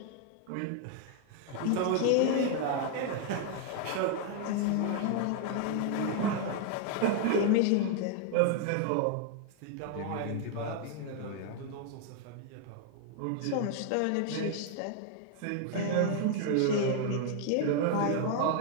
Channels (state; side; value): different; both; correlation 0.00